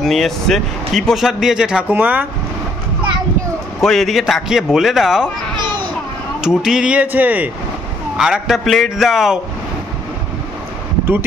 নিয়ে এসছে। কি প্রসাদ দিয়েছে ঠাকুমা? কই এদিকে তাকিয়ে বলে দাও। টুটি দিয়েছে, আর একটা প্লেট দাও।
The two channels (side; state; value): both; normal; correlation 0.66